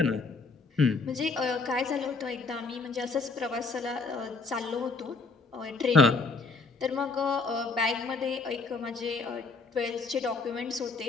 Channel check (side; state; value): right; quieter; 4.1 dB